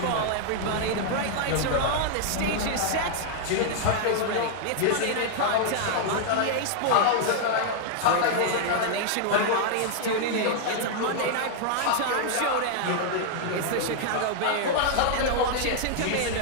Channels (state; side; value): different; both; correlation 0.00